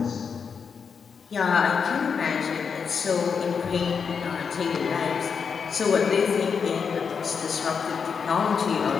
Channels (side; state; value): right; quieter; 6.1 dB